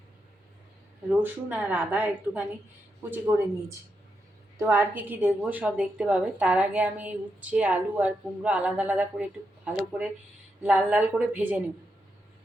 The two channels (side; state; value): both; normal; correlation 0.84